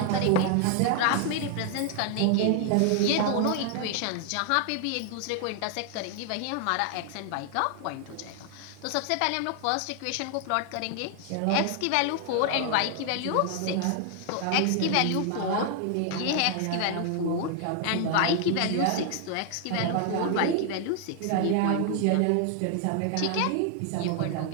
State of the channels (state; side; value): different; both; correlation 0.00